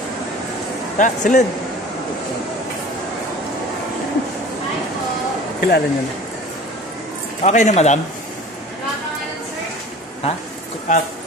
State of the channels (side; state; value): both; normal; correlation 0.42